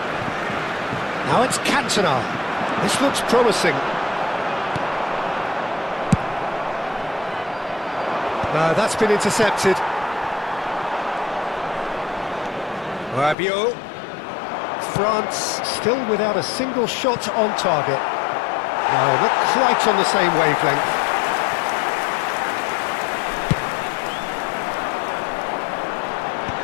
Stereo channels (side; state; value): right; drops out; at 13.4 s